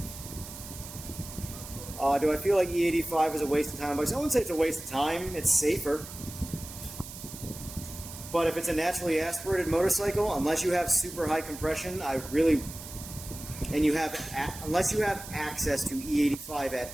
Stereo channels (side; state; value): right; noise; hiss, 13 dB below the sound